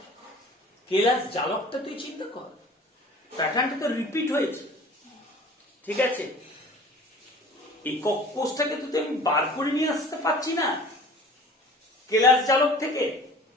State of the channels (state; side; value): normal; both; correlation 0.45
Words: কেলাস জালকটা তুই চিন্তা কর, প্যাটার্নটা তো রিপিট হয়েছে, ঠিক আছে? একক কোষটাকে তো আমি বার করে নিয়ে আসতে পারছি না কেলাস জালক থেকে,